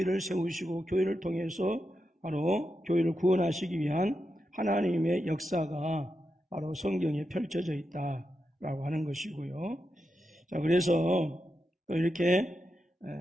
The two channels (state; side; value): normal; both; correlation 0.87